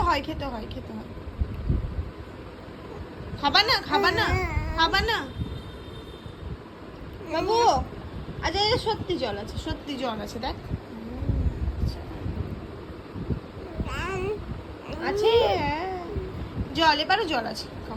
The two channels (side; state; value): both; identical; correlation 1.00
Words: হয় খেতে হয় খেতে হয়। খাবা না খাবা না খাবা না বাবু? আচ্ছা এটা সত্যি জল আছে, সত্যি জল আছে, দেখ আছে জল, এবারও জল আছে,